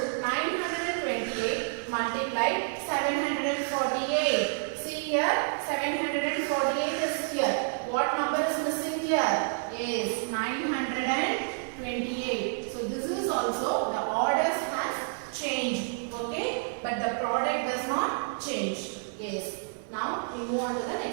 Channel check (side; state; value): left; silent; 58 dB below the other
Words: 928 multiply 748. See here, 748 is here. What number is missing here? Yes, 928. So this is also, the orders has changed. Okay, but the product does not change. Yes. Now we move on to the